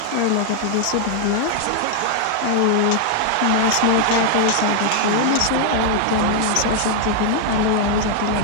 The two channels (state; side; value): different; both; correlation 0.00